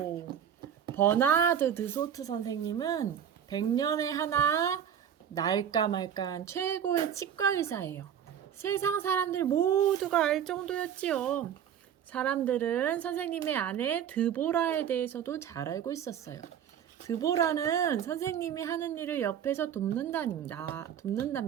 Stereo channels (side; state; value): left; quieter; 9.1 dB